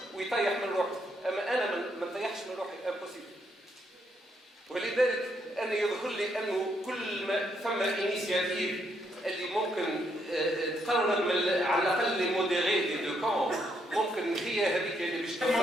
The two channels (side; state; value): both; normal; correlation 0.75